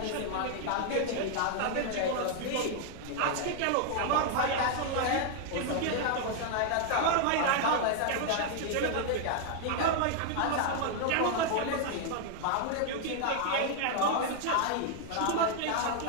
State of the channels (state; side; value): different; both; correlation 0.00